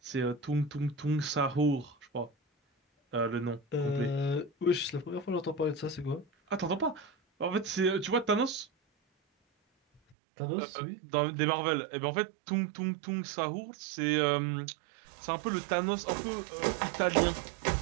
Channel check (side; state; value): left; drops out; at 10.2 s